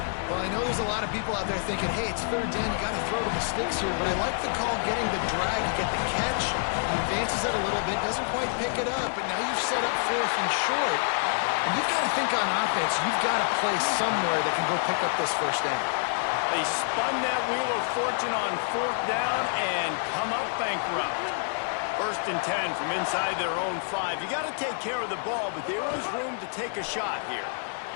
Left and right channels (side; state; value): right; silent; digital silence